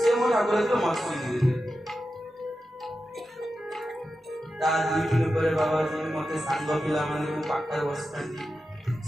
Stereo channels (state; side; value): normal; both; correlation 0.91